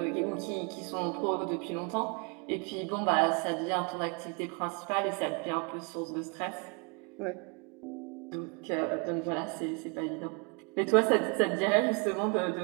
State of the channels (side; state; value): left; quieter; 34.1 dB